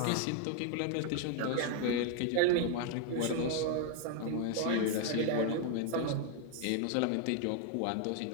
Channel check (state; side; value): different; both; correlation 0.00